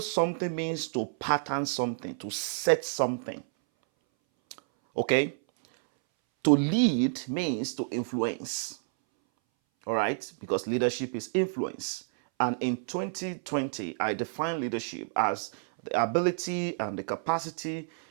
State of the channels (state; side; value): silent; left; 58 dB below the other